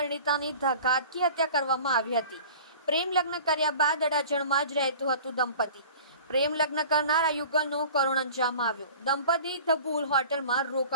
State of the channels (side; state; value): both; inverted; correlation -0.43